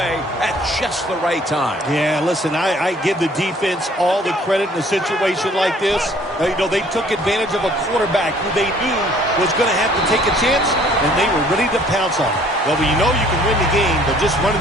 at just the right time. Yeah, listen, I give the defense all the credit in a situation like this. They took advantage of a quarterback who they knew was going to have to take a chance, and they were ready to pounce on it. Well, when you know you can win the game, but just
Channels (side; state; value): both; normal; correlation 0.57